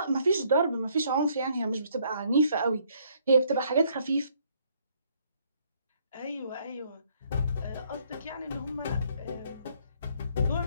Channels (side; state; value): both; inverted; correlation -0.66